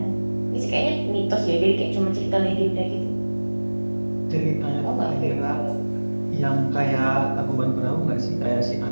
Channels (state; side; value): inverted; both; correlation -1.00